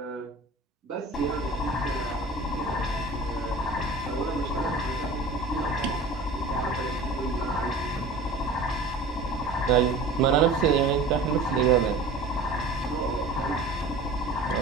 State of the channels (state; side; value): quieter; left; 3.1 dB